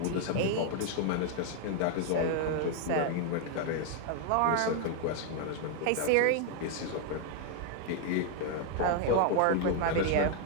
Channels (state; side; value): different; both; correlation 0.00